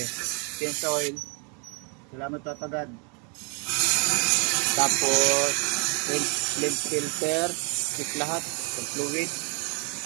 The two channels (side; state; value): left; quieter; 36.1 dB